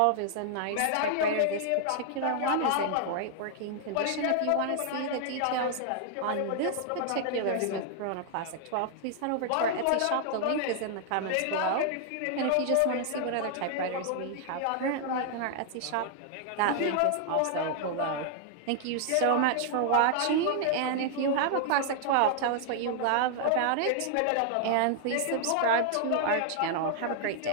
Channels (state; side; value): different; both; correlation 0.00